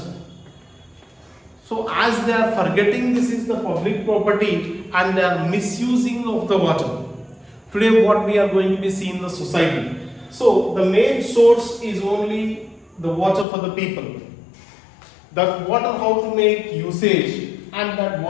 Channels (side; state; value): right; drops out; at 13.5 s